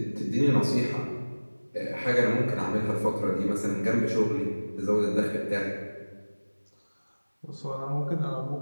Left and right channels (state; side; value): inverted; both; correlation -1.00